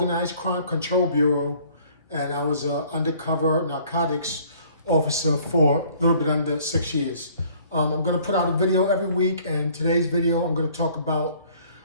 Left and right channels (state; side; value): inverted; both; correlation -0.57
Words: Crime Control Bureau, and I was an undercover narcotics officer for a little bit under 6 years. I'm going to put out a video every week, and today's video I'm going to talk about